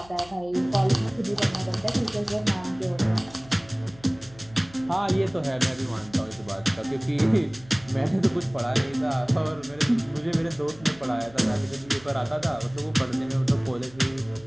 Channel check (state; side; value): noise; left; hum, 23 dB below the sound